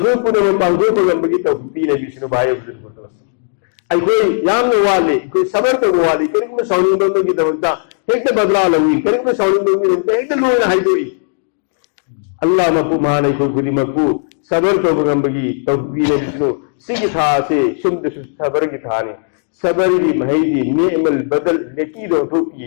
पुनम पांगो पगंबगी तौफीक पीने बिसनु भाई बुजुर्ग दोस्तों अखोई यामन वाले अखोई सबर तो वाले करिक में साउनिंग बमगी दमकता हेक्ता बदला लवी करिक में साउनिंग बमगी दमकता हेक्ता लोना हाइदोई अल्लाह मपु मान अखोई खुदी मक्कू सबर तो बगंबगी तौफीक पीने बिसनु सिगी था से शुद्ध सबर की थाने सबर की महदी नेमल बदल नेकी दो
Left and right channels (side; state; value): right; silent; digital silence